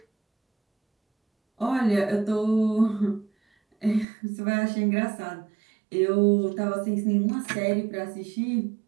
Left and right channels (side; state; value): left; drops out; at 4.0 s